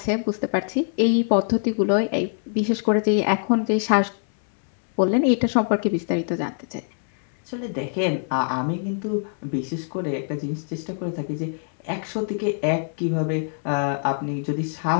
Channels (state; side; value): silent; right; 63 dB below the other